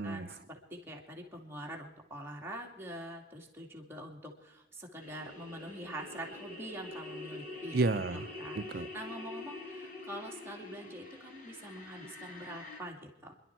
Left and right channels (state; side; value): normal; both; correlation 0.46